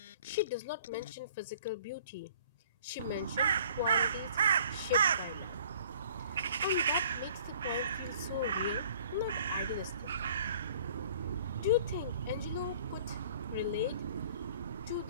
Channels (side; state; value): both; inverted; correlation -0.53